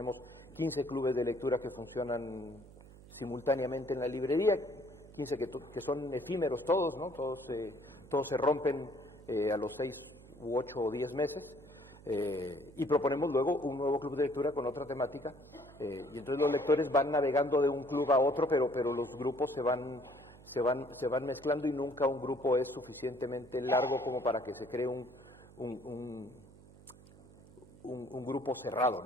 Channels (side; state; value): right; noise; hum, 21 dB below the sound